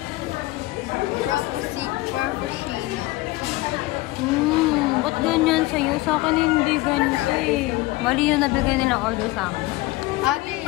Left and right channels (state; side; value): quieter; right; 19.8 dB